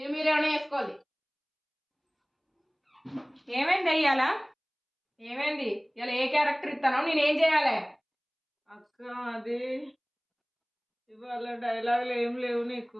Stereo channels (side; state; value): both; identical; correlation 1.00